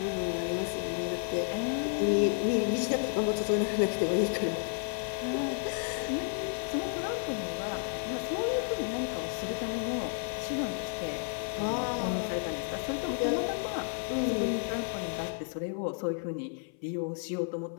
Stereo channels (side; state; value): right; silent; 55 dB below the other